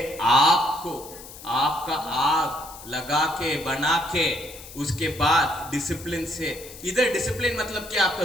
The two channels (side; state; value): left; noise; hiss, 16 dB below the sound